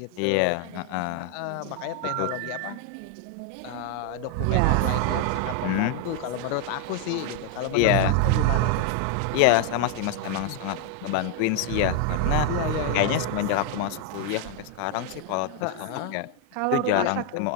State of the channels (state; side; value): different; both; correlation 0.00